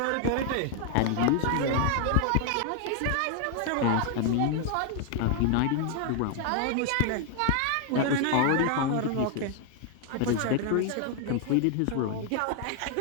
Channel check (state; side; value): different; both; correlation 0.00